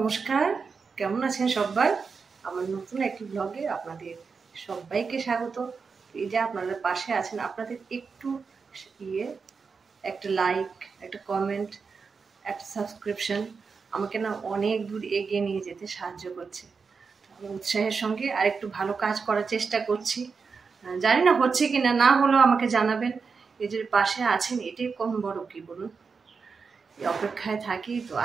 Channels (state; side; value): quieter; left; 5.2 dB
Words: কেমন আছেন সবাই? আমার নতুন একটি ব্লগে আপনাদের সবাইকে স্বাগত। এই যে আপনারা পাশে আছেন, আপনাদের একটু ইয়ে একটা লাইক, একটা কমেন্ট, একটা সাবস্ক্রিপশন আমাকে না অনেক দূর এগিয়ে নিয়ে যেতে সাহায্য করছে। আমি উৎসাহের সঙ্গে আর একটু ভালো কাজ করার চেষ্টা করছি। জানি না হচ্ছে কি না, না হলেও আমাকে জানাবেন। এই যে পাশে আছেন, এটাই কম বড় কি বলুন, এই অপেক্ষায় থাকি। তো